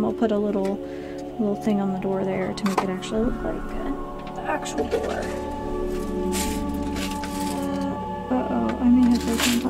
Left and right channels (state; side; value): identical; both; correlation 1.00